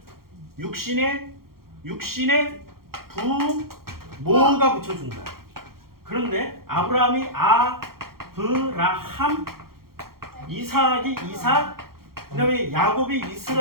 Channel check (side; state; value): left; late; 0.93 ms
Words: 육신의 부모가 붙여준 거야. 그런데 아브라함이 아브라함, 이삭이 이삭, 그 다음에 야곱이